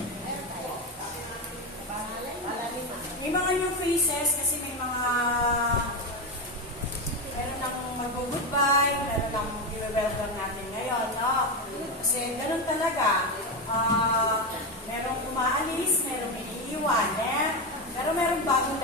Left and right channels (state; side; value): normal; both; correlation 0.13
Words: May mga new faces kasi may mga meron nang mag-goodbye, meron nang i-welcome natin ngayon, no? Kasi ganun talaga. Merong umaalis, merong iniiwan, pero merong bagong